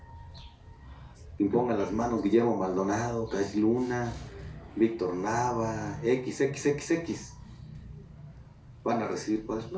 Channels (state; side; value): identical; both; correlation 1.00